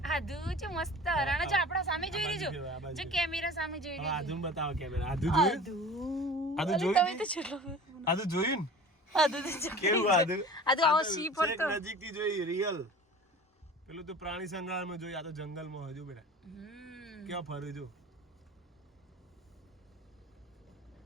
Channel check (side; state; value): both; normal; correlation 0.40